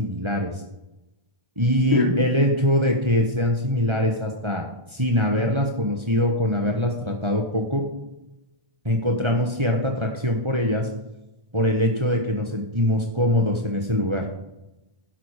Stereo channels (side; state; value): left; late; 1.3 ms